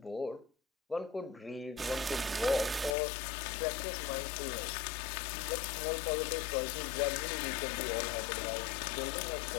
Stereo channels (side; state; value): right; drops out; at 3.0 s